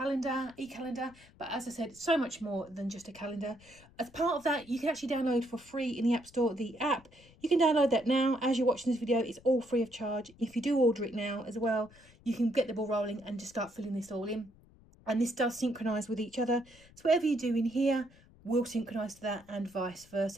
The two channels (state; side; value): noise; left; rumble, 25 dB below the sound